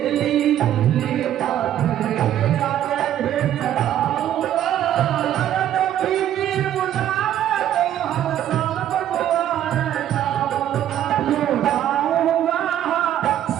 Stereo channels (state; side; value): quieter; left; 11.4 dB